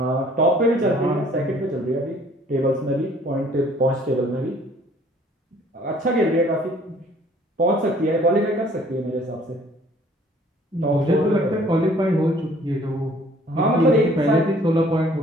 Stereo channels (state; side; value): normal; both; correlation 0.57